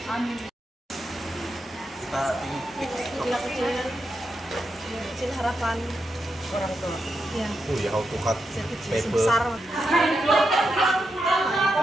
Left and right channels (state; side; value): normal; both; correlation 0.85